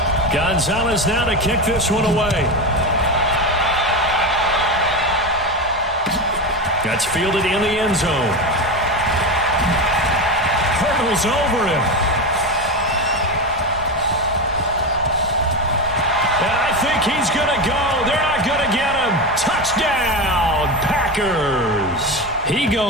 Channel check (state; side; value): normal; both; correlation 0.18